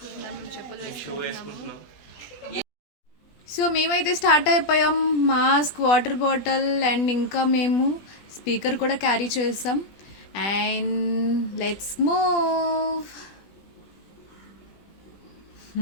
మేము చెప్పులు వేసుకుంటున్నాము. సో మేమైతే స్టార్ట్ అయిపోయాం. మాస్క్, వాటర్ బాటిల్ అండ్ ఇంకా మేము స్పీకర్ కూడా క్యారీ చేసాం. And let's move.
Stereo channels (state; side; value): late; right; 20 ms